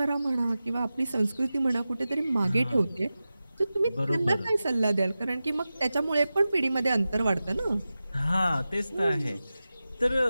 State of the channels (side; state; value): both; inverted; correlation -0.95